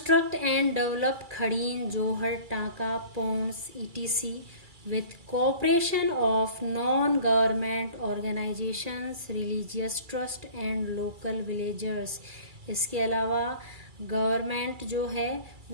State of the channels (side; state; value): left; late; 2.3 ms